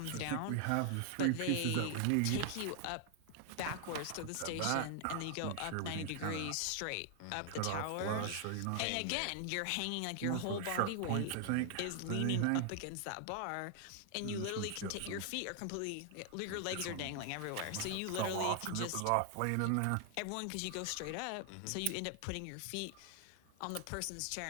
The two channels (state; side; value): different; both; correlation 0.00